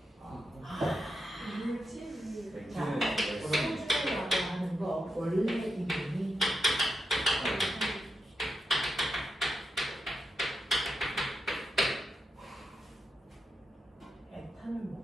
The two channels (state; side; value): normal; both; correlation 0.87